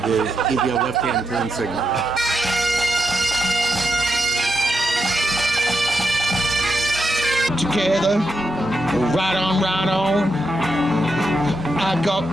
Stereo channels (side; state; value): both; normal; correlation 0.83